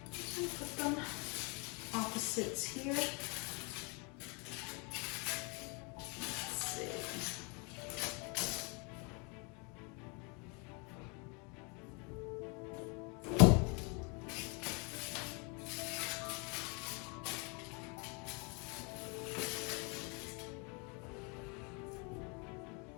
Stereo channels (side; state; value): right; quieter; 32.4 dB